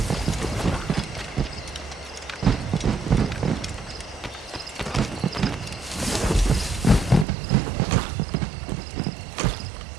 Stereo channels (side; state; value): left; drops out; at 7.2 s